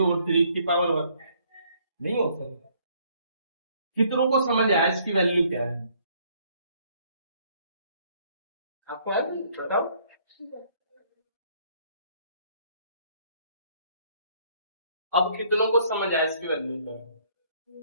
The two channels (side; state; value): both; inverted; correlation -0.64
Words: और 3 की पावर 1? नहीं हो सकता। कितनों को समझ आया इसकी वैल्यू क्या है? आपको आया बताओ। अब कितनों को समझ आया इसकी वैल्यू क्या है?